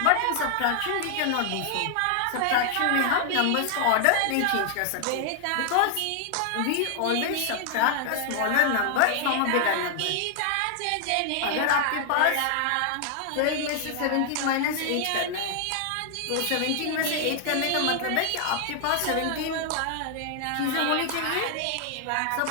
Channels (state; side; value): different; both; correlation 0.00